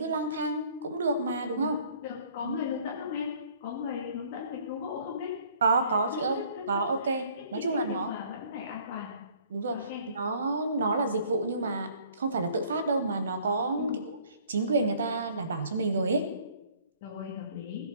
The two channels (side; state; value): both; inverted; correlation -0.57